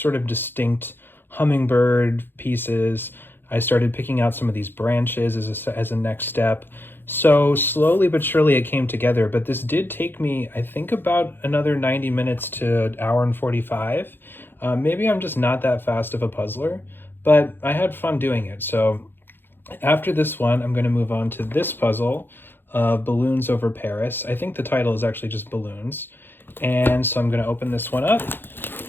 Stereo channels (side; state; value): right; late; 0.10 ms